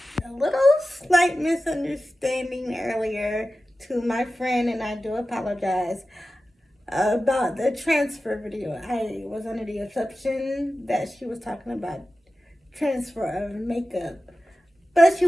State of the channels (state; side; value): normal; both; correlation 0.94